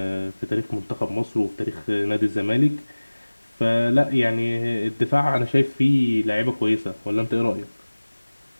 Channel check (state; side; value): inverted; both; correlation -1.00